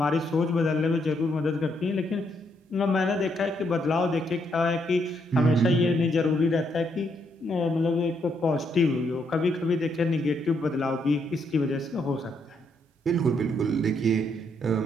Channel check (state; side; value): normal; both; correlation 0.75